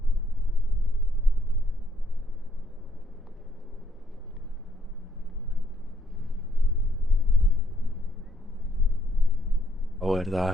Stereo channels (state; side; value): normal; both; correlation 0.70